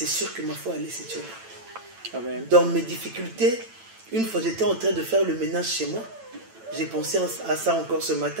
sûr que ma foi allait s'étioler. Dans mes difficultés, une fois j'étais en train de faire le ménage chez moi, j'ai pensé à ça encore ce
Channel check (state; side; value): late; left; 9.0 ms